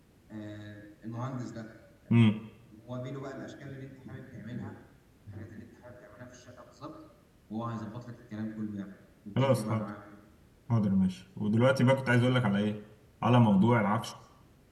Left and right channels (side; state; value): both; identical; correlation 1.00